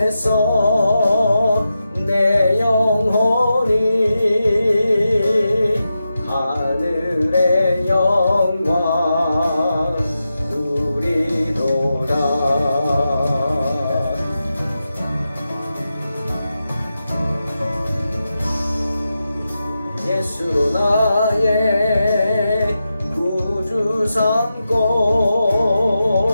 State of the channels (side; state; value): both; inverted; correlation -0.90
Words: 내 영혼이 하늘의 영광 누리도다. 예수로 나의 구주 삼고